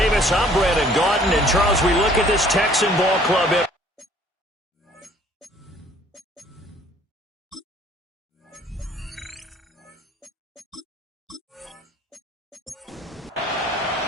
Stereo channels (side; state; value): both; normal; correlation 0.56